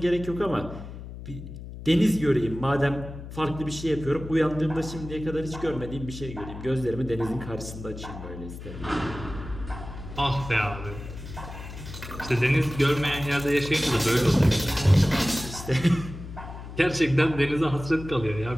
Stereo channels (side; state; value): left; noise; hum, 11 dB below the sound